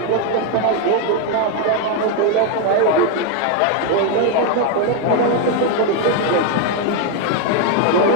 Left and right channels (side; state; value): both; different; correlation 0.01